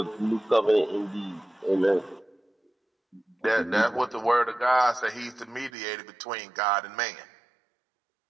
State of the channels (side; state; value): left; drops out; at 5.7 s